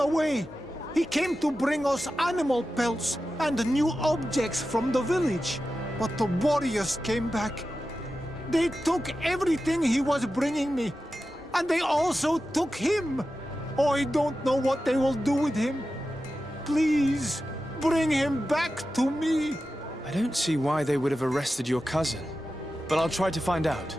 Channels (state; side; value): normal; both; correlation 0.92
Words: He came to bring us animal pelts and new objects from the village. But the warriors came back. They took everything he was bringing me. And they also took him. Oh, I don't know what they will do with him. Please, bring him back to me. I don't see why they would have arrested your cousin. But I'll try to find out.